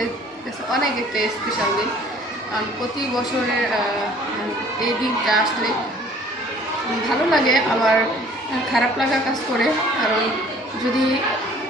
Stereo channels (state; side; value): normal; both; correlation 0.54